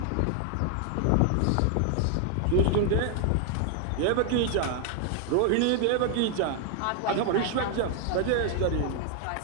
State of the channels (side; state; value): both; different; correlation 0.00